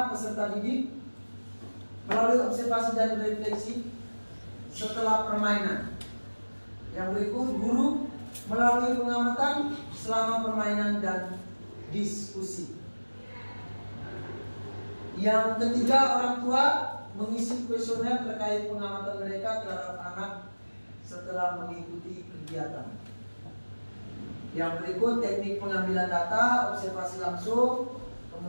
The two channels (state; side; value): inverted; both; correlation -1.00